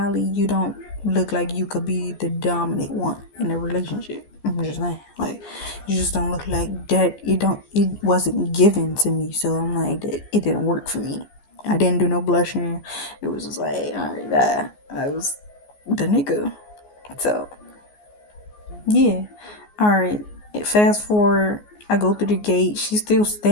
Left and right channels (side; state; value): right; late; 14 ms